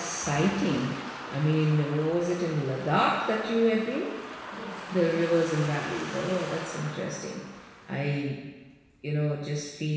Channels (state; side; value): identical; both; correlation 1.00